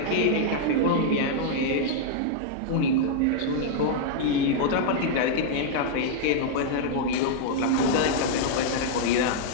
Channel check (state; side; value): different; both; correlation -0.01